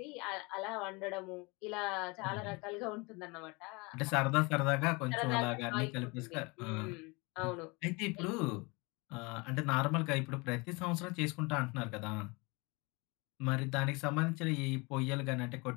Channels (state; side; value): quieter; right; 27.3 dB